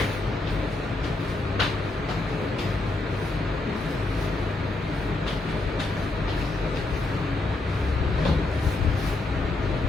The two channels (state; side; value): quieter; right; 3.0 dB